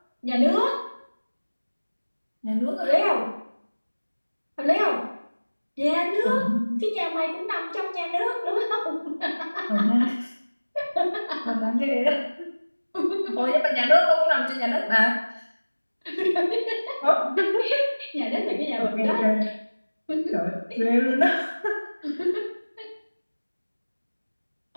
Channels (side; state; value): both; inverted; correlation -1.00